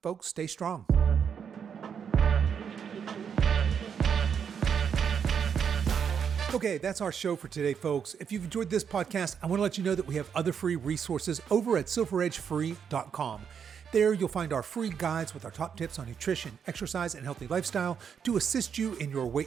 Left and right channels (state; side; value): quieter; left; 7.3 dB